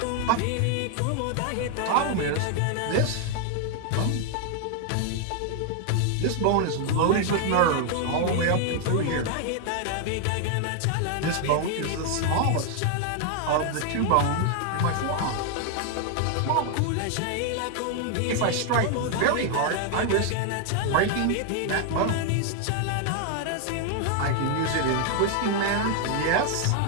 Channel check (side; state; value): both; different; correlation 0.00